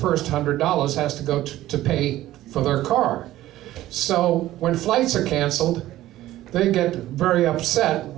$100 has to go to pay for their car. So when flights are canceled, they get very upset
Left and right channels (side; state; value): left; quieter; 14.9 dB